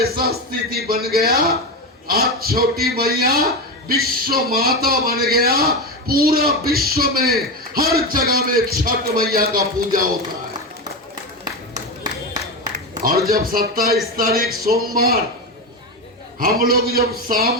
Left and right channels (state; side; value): normal; both; correlation 0.17